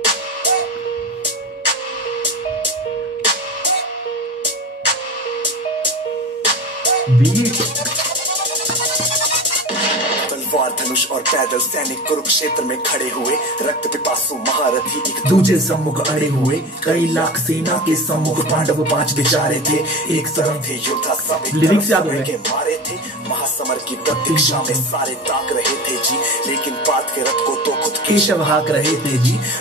तलवार धनुष और पैदल सैनिक कुरुक्षेत्र में खड़े हुए, रक्त पिपासु महारथी एक दूजे सम्मुख अड़े हुए। कई लाख सेना के सम्मुख पांडव पांच बेचारे थे, एक तरफ थे योद्धा सब लिरिक्स के मारे थे। महासमर की प्रतीक्षा में सारे ताक रहे थे जी, लेकिन पार्थ के रथ को तो खुद केशव हाक रहे थे जी।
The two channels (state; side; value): normal; both; correlation 0.30